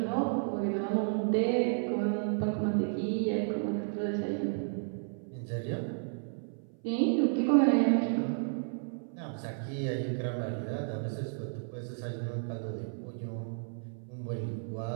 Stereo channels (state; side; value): silent; left; 56 dB below the other